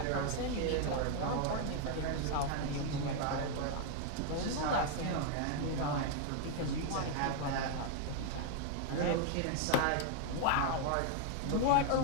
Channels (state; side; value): different; both; correlation 0.00